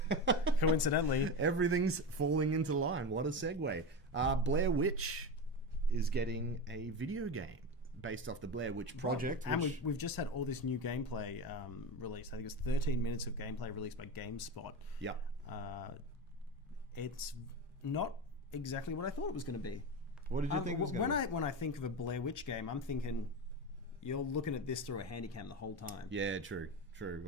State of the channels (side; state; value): both; normal; correlation 0.20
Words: Coincidentally, everything's falling into line. What a segue! Blair Witch is getting a video game based off the Blair Witch Project. And we've just had all this new gameplay released. I think it's 13 minutes of gameplay released by GameSpot. Yeah. It's not exactly what I thought it was going to be. What did you think it was going to be? When I think of a Blair Witch game, I'm thinking you're looking at this through a handycam the whole time. Yeah, true.